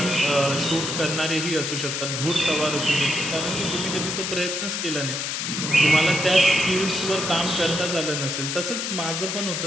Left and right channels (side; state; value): left; noise; hiss, 2 dB below the sound